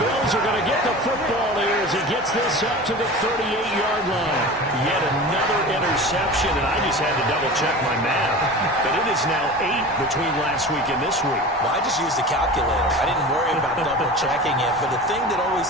Bills are going to get the football here as he gets this up to the 38-yard line. Yet another interception, and I just had to double-check my math. But it is now 8 between last week and this week. Well, I just used the calculator. I didn't worry about double-checking it. But the thing that always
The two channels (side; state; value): both; normal; correlation 0.34